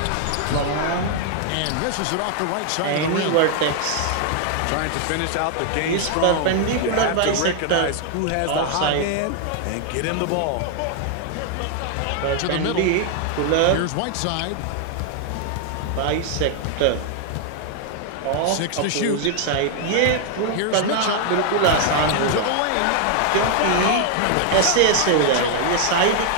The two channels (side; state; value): both; different; correlation 0.00